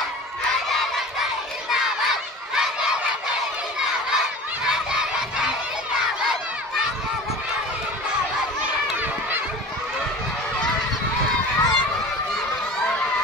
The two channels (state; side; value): normal; both; correlation 0.38